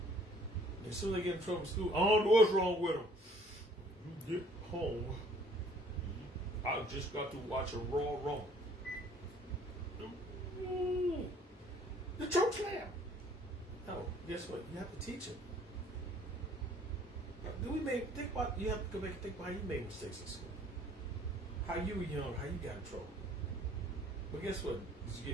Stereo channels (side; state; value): both; normal; correlation 0.57